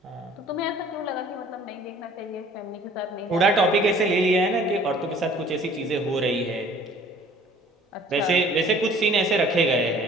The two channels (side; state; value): both; normal; correlation 0.52